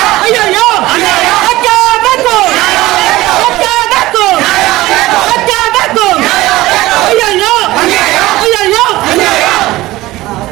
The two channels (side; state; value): left; quieter; 17.9 dB